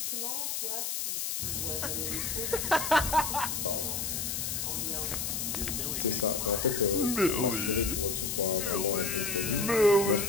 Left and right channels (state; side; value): noise; left; hiss, 2 dB below the sound